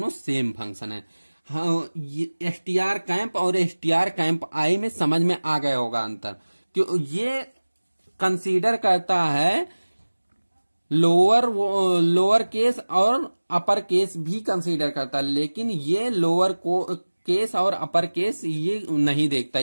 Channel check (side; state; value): both; inverted; correlation -1.00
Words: सेम फंक्शन है। हाँ, str कैंप और str कैंप आई में समझ में आ गया होगा अंतर। क्यों? ये कंसीडर करता है लोअर केस और अपर केस भी कंसीडर करता है, लेकिन ये लोअर केस और अपर केस ये नहीं देखता।